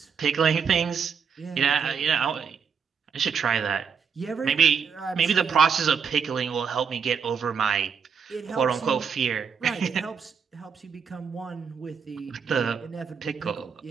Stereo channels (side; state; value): left; quieter; 6.5 dB